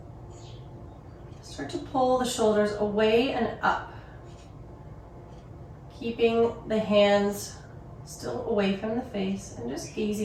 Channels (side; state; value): both; identical; correlation 1.00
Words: Start to pull the shoulders away and up, keeping the hands still away from the face and just